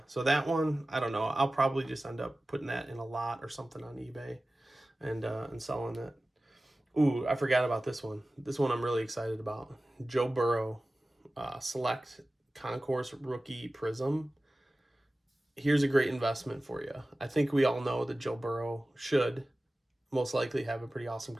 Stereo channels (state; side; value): normal; both; correlation 0.96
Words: So that one, I don't know. I'll probably just end up putting that in a lot or something on eBay and selling it. Ooh, I forgot about this one. This one I'm really excited about. Joe Burrow, Select Concourse Rookie Prism. Here's a great investment for you. I think we all know that Joe Burrow should most likely have a pretty awesome